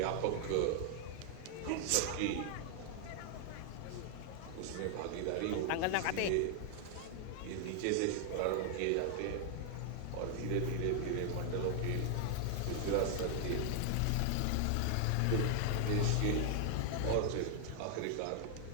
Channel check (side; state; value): both; different; correlation 0.00